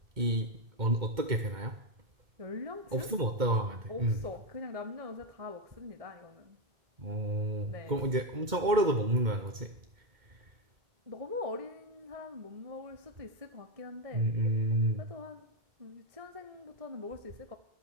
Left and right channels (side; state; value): left; late; 2.1 ms